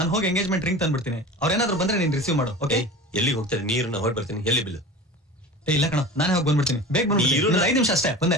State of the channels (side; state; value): both; normal; correlation 0.35